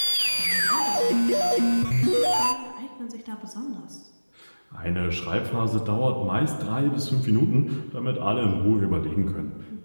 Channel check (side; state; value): both; inverted; correlation -1.00